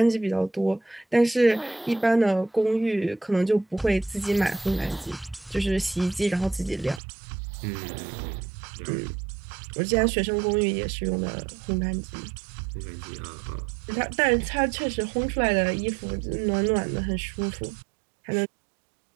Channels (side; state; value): left; drops out; at 7.0 s